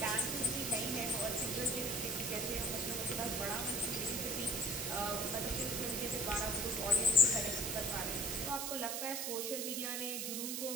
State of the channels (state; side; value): noise; right; hiss, 2 dB below the sound